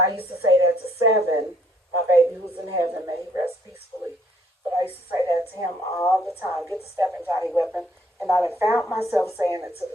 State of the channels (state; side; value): normal; both; correlation 0.65